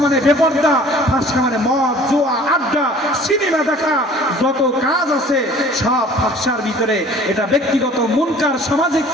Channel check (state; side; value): normal; both; correlation 0.49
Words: মানে বেপরদা, ফাহশা মানে মদ, জুয়া, আড্ডা, সিনেমা দেখা, যত কাজ আছে সব ফাহশার ভিতরে। এটা ব্যক্তিগত মুনকার, সামাজিক